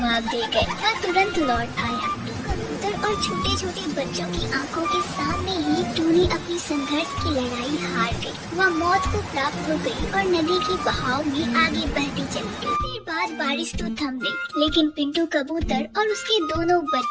दे गए। वह तुरंत लौट आया। कबूतर और छोटे छोटे बच्चों की आंखों के सामने ही टोनी अपनी संघर्ष की लड़ाई हार गई। वह मौत को प्राप्त हो गई और नदी के बहाव में आगे बहती चली गई। देर बाद बारिश तो थम गई, लेकिन पिंटू कबूतर और उसके दोनों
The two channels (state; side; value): identical; both; correlation 1.00